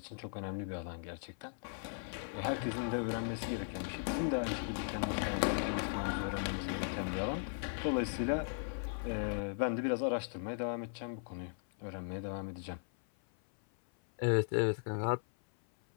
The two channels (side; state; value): right; silent; 53 dB below the other